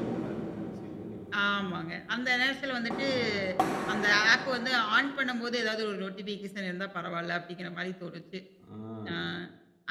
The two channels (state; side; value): identical; both; correlation 1.00